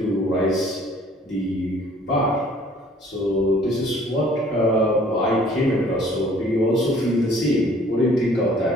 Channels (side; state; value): both; normal; correlation 0.56